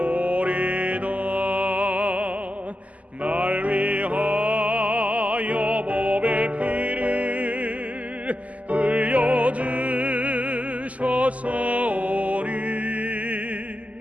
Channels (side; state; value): left; late; 0.071 ms